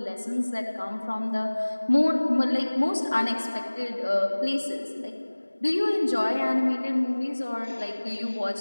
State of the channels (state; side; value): inverted; both; correlation -1.00